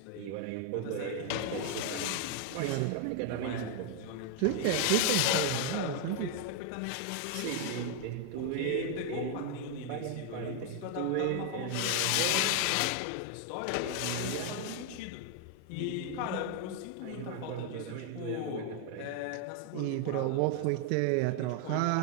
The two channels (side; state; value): both; different; correlation 0.00